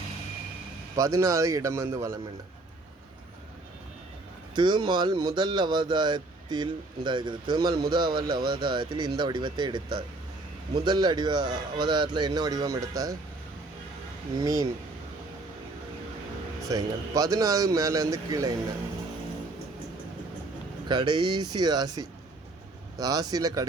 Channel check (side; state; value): left; quieter; 3.0 dB